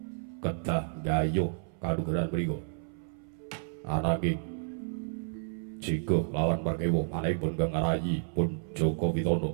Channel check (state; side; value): silent; left; 57 dB below the other